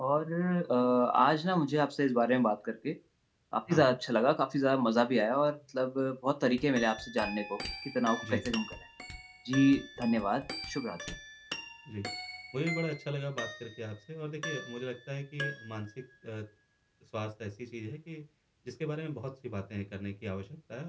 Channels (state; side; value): identical; both; correlation 1.00